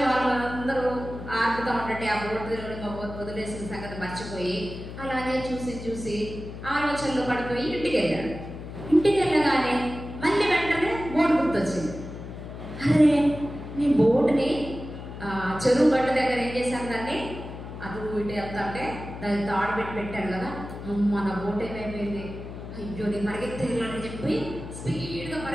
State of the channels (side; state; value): left; noise; hum, 10 dB below the sound